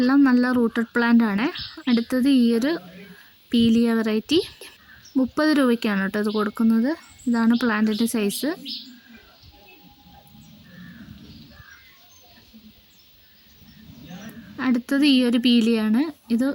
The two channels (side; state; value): both; identical; correlation 1.00